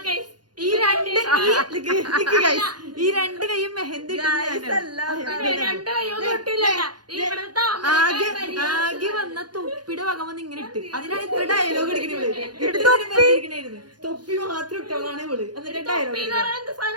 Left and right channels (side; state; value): left; late; 0.70 ms